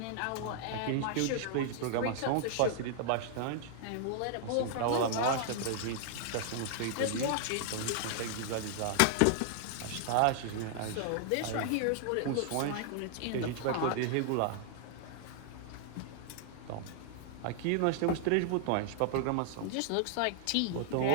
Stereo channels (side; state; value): both; different; correlation -0.01